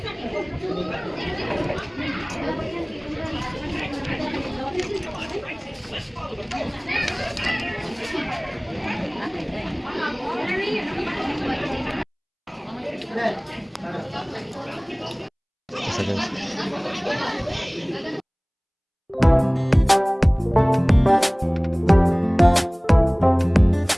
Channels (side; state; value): both; identical; correlation 1.00